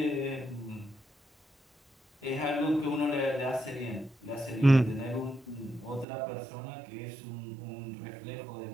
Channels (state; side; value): drops out; left; at 6.1 s